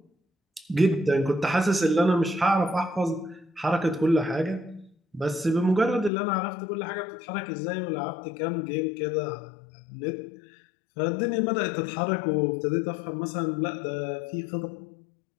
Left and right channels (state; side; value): drops out; right; at 6.1 s